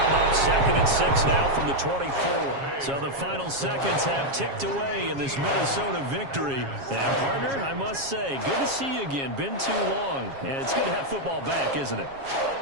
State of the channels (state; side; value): late; left; 7.3 ms